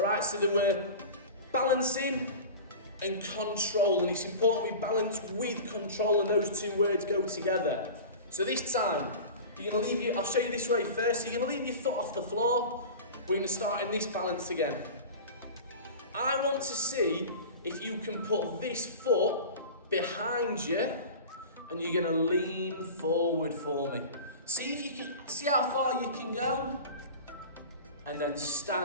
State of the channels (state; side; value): inverted; both; correlation -0.34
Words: so they were balancing and control, and it's important we balance with control, and those 2 words go together. So this time, I'll show you this way first. So you're going to leave your foot off the floor. We're going to start in this balance again. I want to see if you can put this foot behind you, and you're going to lean forward for me. See if you can, see how far you can go, and then